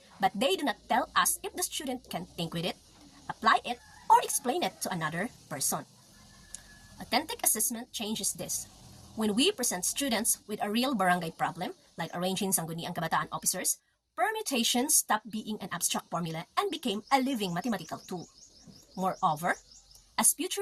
but they do not tell us if the student can think with it, apply it, or explain it to another person. Authentic assessment changes this. When we present students with a real barangay problem, like arranging Sangguniang Kabataan officers, permutations stopped being an abstract formula and became a living mathematical tool. Moreover, as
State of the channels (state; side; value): identical; both; correlation 1.00